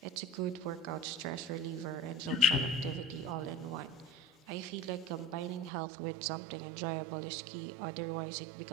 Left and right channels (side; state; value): left; drops out; at 5.7 s